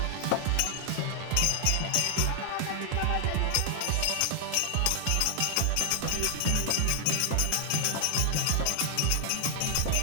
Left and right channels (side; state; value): both; different; correlation 0.00